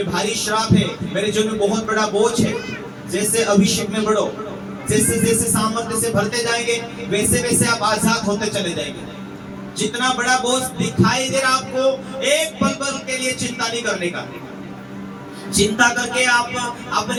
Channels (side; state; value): both; identical; correlation 1.00